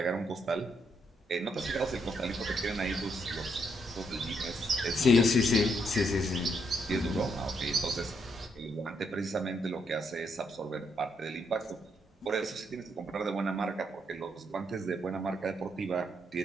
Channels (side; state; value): both; normal; correlation 0.76